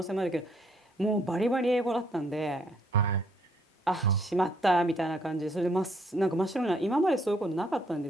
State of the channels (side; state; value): both; normal; correlation 0.68